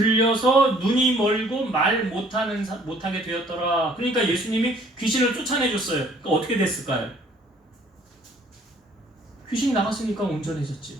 눈이 멀고 말 못하게 되었더라. 그러니까 예수님이 귀신을 쫓아내줬어요. 그러니까 어떻게 됐을까요? 귀신이 나갔으니까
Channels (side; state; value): both; normal; correlation 0.59